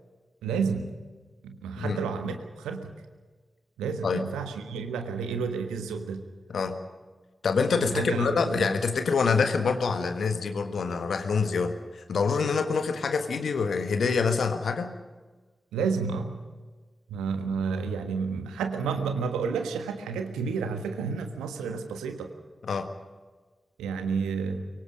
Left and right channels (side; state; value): both; normal; correlation 0.76